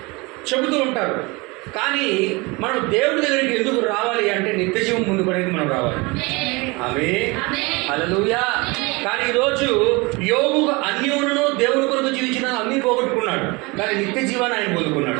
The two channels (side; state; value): left; quieter; 25.7 dB